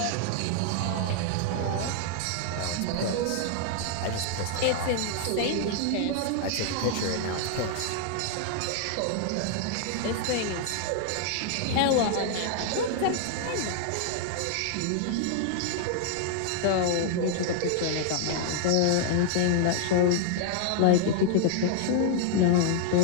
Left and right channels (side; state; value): both; different; correlation 0.00